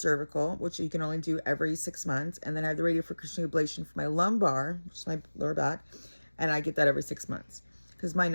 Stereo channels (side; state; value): both; inverted; correlation -1.00